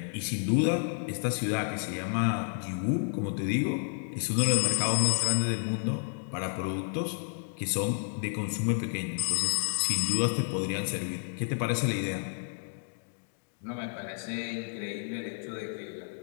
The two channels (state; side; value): silent; right; digital silence